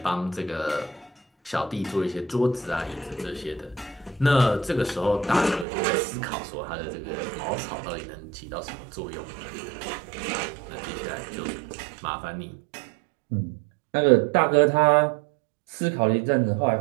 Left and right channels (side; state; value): left; drops out; at 5.7 s